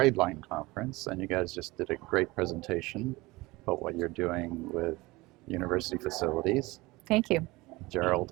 Conference, and you guys just did a great presentation about what you're doing with university facilities, Thank you. Gerald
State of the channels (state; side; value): quieter; left; 21.7 dB